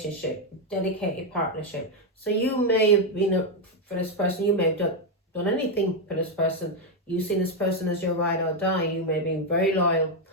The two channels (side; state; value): both; normal; correlation 0.03